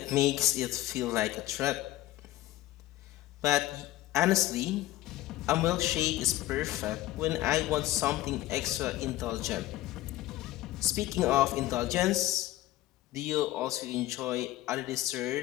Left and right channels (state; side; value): quieter; right; 15.8 dB